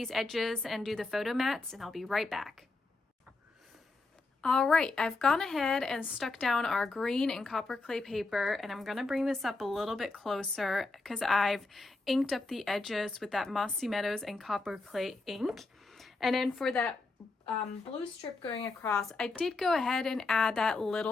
edges, and do the photo mats, and I'll be right back. All right, I've gone ahead and stuck down our green and copper clay paper, and I'm gonna bring this up a little bit closer because I've inked up the edges with that Mossy Meadows and copper clay ink. And then for that blue strip going across, I did go ahead and add that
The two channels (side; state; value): right; quieter; 3.5 dB